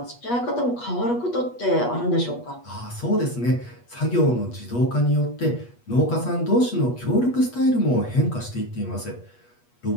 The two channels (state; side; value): late; right; 8.3 ms